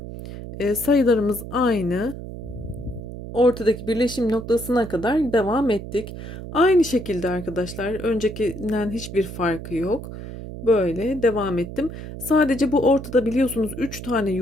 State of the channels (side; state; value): right; noise; hum, 10 dB below the sound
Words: Sayılarımız aynı. Ortadaki birleşim noktasına kadar devam ettik. Aynı şekilde arkadaşlar, öncekinden hiçbir farkı yok. Böyle devam ettim. Sadece bu ortada biliyorsunuz 3 tane